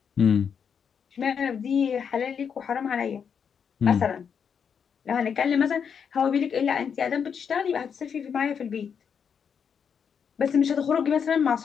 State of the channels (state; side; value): quieter; right; 7.0 dB